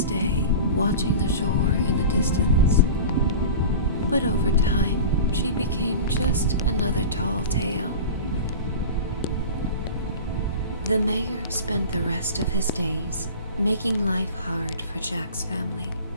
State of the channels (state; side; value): inverted; both; correlation -0.34